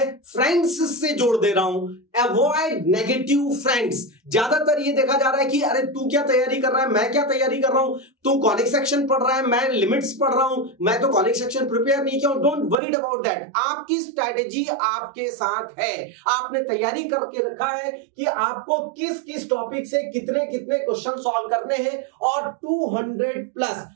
फ्रेंड्स से जोड़ दे रहा हूं। Avoid negative friends. ज्यादातर ये देखा जा रहा है कि अरे तू क्या तैयारी कर रहा है, मैं क्या तैयारी कर रहा हूं, तू कॉनिक सेक्शन पढ़ रहा है, मैं लिमिट्स पढ़ रहा हूं, मैं तो कॉनिक सेक्शन प्रिपेयर नहीं किया हूं। Don't worried about that. आपकी स्ट्रैटेजी आपके साथ है। आपने तैयारी करके रखा है कि आपको किस किस टॉपिक से कितने कितने क्वेश्चन सॉल्व करने हैं। और 200 प्लस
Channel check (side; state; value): left; drops out; at 12.8 s